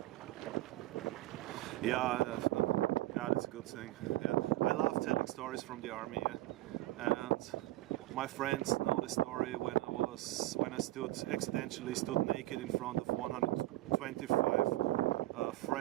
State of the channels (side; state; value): left; quieter; 17.3 dB